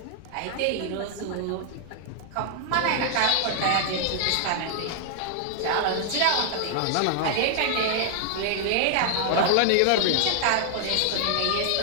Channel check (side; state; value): both; different; correlation 0.00